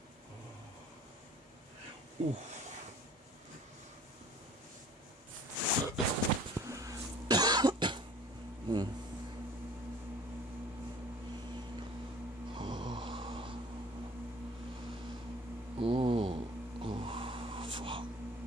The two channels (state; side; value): normal; both; correlation 0.49